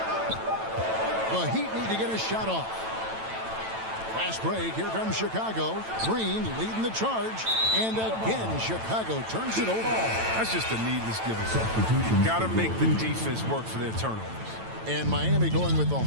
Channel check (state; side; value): late; left; 9.0 ms